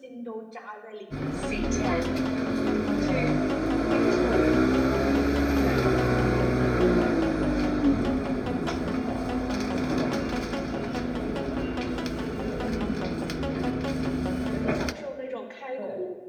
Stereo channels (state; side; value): identical; both; correlation 1.00